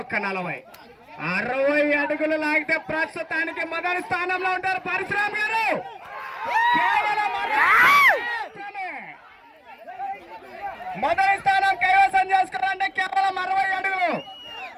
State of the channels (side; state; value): both; identical; correlation 1.00